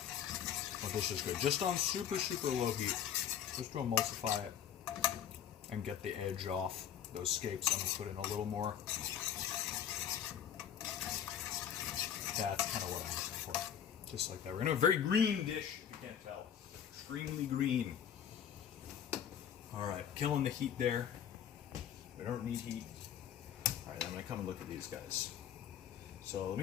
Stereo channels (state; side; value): quieter; right; 9.2 dB